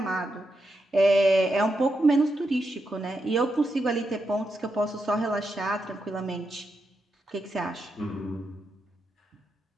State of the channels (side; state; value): both; normal; correlation 0.85